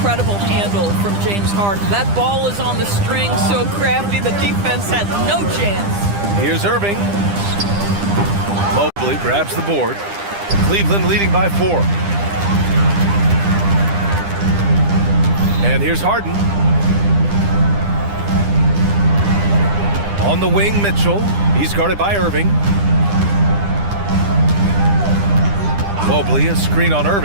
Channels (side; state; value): left; late; 9.9 ms